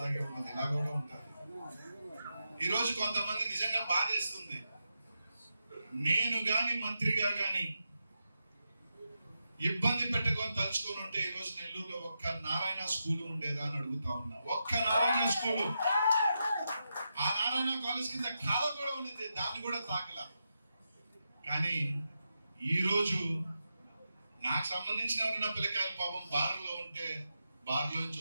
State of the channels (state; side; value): inverted; both; correlation -0.87